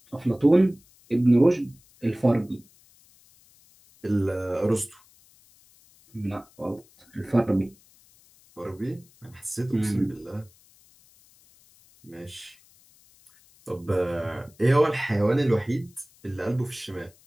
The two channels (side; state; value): left; noise; hiss, 29 dB below the sound